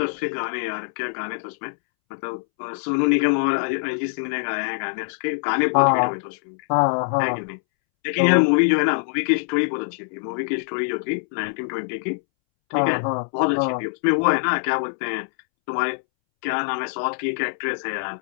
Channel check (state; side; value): silent; right; 63 dB below the other